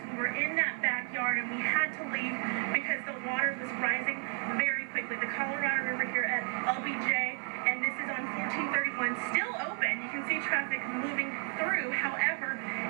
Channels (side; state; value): left; quieter; 39.3 dB